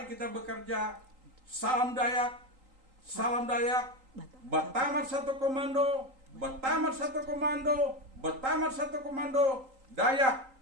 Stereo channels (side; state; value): left; late; 3.8 ms